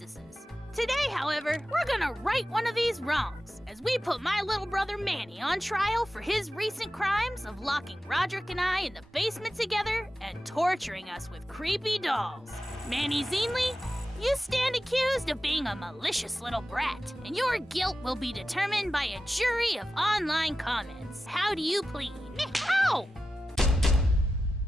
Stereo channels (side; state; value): both; normal; correlation 0.93